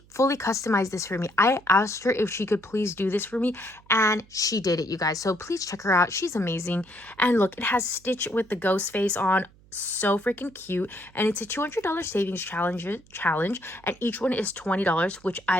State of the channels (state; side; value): noise; right; hum, 27 dB below the sound